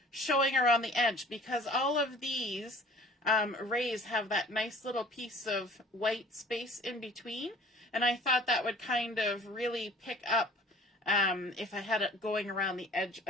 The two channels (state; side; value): normal; both; correlation 0.49